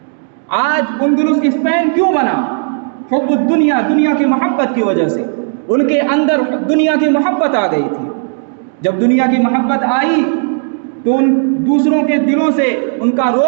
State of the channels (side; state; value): left; silent; 60 dB below the other